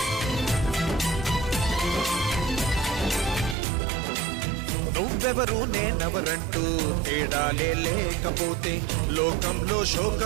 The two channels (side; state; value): left; drops out; at 3.6 s